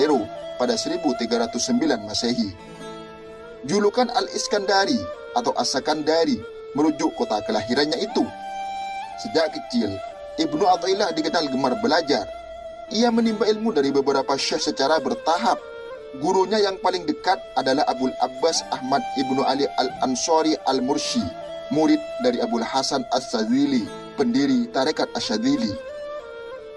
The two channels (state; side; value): identical; both; correlation 1.00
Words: pada 1309 Masehi. Julukan Al-Iskandari atau As-Sakandari merujuk kota kelahirannya itu. Sejak kecil, Ibnu Athaillah dikenal gemar belajar. Ia menimba ilmu dari beberapa syekh secara bertahap. Gurunya yang paling dekat adalah Abul Abbas Ahmad Ibnu Ali Al-Ansari Al-Mursi, murid dari Abul Hasan As-Sadzili, pendiri Tarekat Asy-Syadzili.